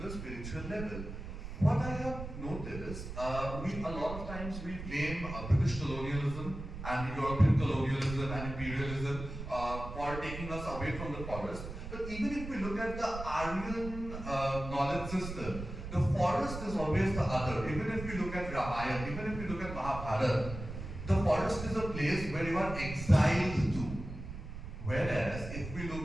the spiritual level. What I have noticed, a lot of times we blame British colonialism and European colonialism and imperialism for taking us away from the forest. But even if we look at the Aryan knowledge system, the forest is always the other. Even if we look at Ramayana, even if we look at Mahabharata, the forest is a place where you are exiled to. Whereas if we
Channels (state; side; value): noise; right; rumble, 9 dB below the sound